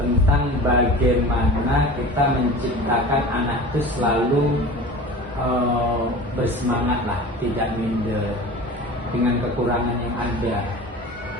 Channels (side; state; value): both; normal; correlation 0.37